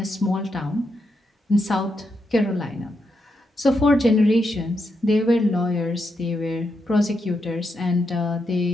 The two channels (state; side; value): normal; both; correlation 0.83